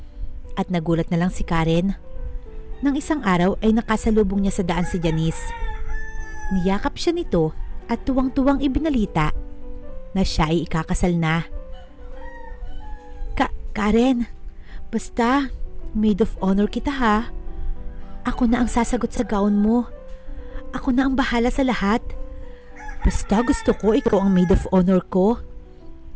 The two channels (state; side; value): identical; both; correlation 1.00